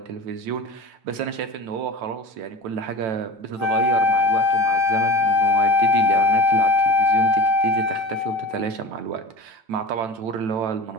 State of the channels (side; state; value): left; late; 9.0 ms